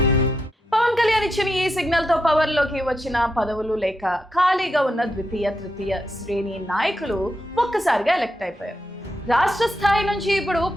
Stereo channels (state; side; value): normal; both; correlation 0.83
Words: ఇచ్చిన ఈ సిగ్నల్ తో పవర్ లోకి వచ్చిన పదవులు లేక ఖాళీగా ఉన్న ద్వితీయ, తృతీయ శ్రేణి నాయకులు ఒక్కసారిగా ఎలక్ట్ అయిపోయారు. రాష్ట్ర స్థాయి నుంచి ఇప్పుడు